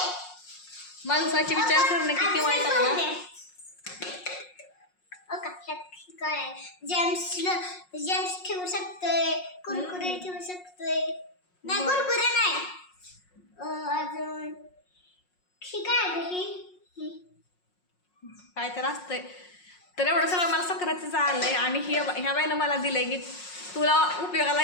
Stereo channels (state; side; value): late; right; 5.5 ms